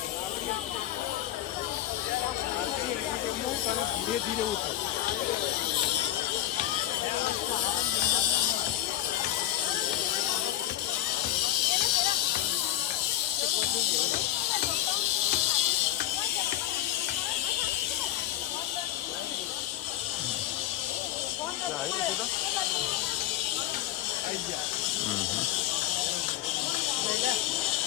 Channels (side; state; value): right; quieter; 13.2 dB